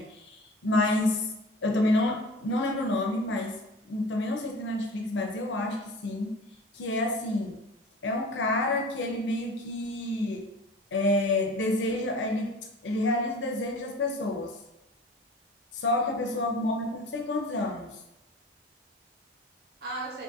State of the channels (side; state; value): both; normal; correlation 0.39